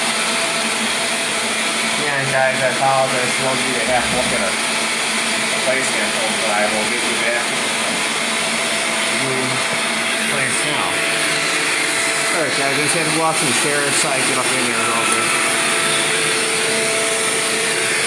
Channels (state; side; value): identical; both; correlation 1.00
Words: Yeah, guys, I apologize for those of you that have to look at a placement film, but I will give you back the place now. Alright guys, I just had to walk some chairs so I can get up in there a little bit.